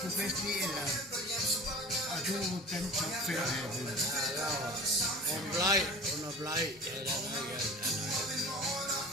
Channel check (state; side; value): normal; both; correlation 0.39